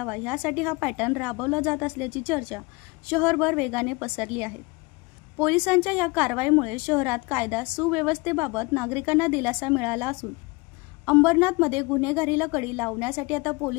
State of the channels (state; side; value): quieter; right; 26.0 dB